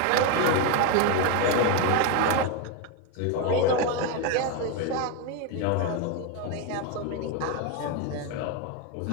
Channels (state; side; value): different; both; correlation 0.02